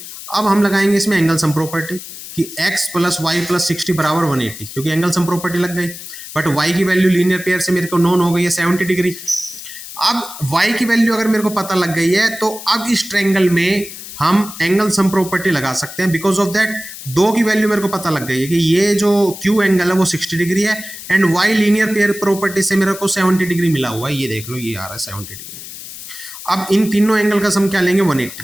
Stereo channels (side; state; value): left; noise; hiss, 12 dB below the sound